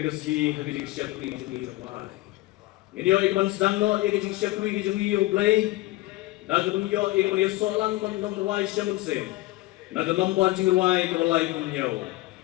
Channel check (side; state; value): right; quieter; 18.6 dB